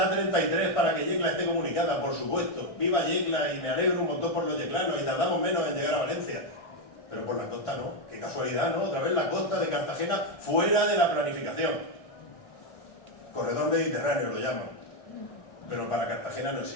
para que Yecla esté comunicada, por supuesto. Viva Yecla y me alegro un montón por los yeclanos y tardamos menos en llegar a Valencia. Pero por la costa no. Qué casualidad, ¿no? Otra vez la costa de Cartagena fuera de la planificación. Corredor Mediterráneo lo llaman. Pero para Cartagena no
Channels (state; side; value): late; right; 1.6 ms